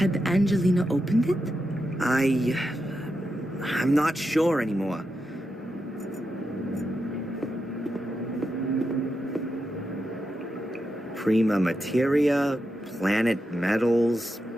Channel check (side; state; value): both; normal; correlation 0.87